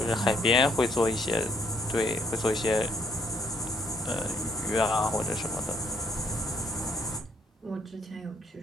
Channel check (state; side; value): normal; both; correlation 0.69